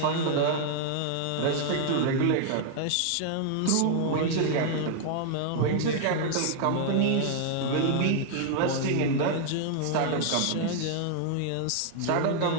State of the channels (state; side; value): different; both; correlation -0.01